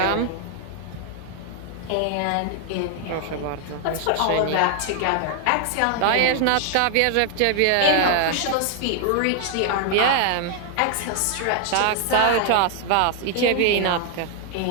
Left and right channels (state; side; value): different; both; correlation 0.00